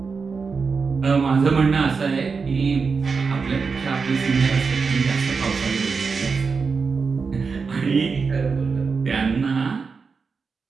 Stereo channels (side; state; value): left; quieter; 5.0 dB